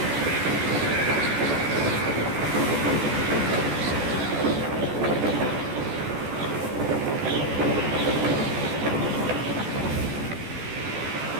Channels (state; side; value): late; left; 14 ms